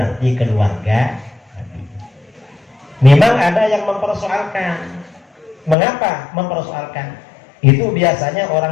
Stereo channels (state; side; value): drops out; right; at 5.8 s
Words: keluarga Nabi. Memang ada yang mempersoalkan. Mengapa mempersoalkan? Itu biasanya